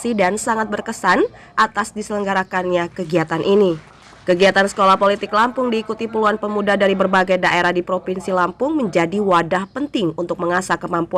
dan sangat berkesan atas diselenggarakannya kegiatan ini. Kegiatan Sekolah Politik Lampung diikuti puluhan pemuda dari berbagai daerah di Provinsi Lampung menjadi wadah penting untuk mengasah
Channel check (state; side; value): identical; both; correlation 1.00